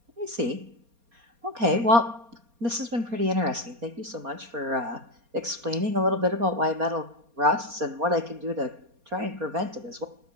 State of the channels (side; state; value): left; late; 4.3 ms